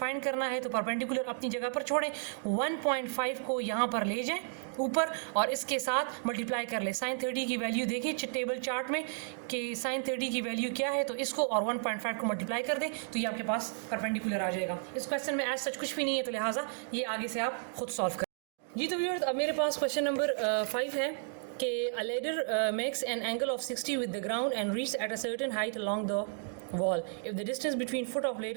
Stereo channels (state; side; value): silent; left; 56 dB below the other